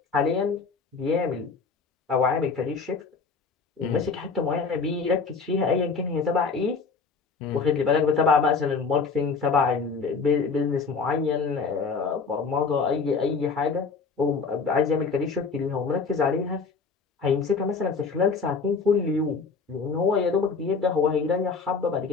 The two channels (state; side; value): quieter; right; 4.9 dB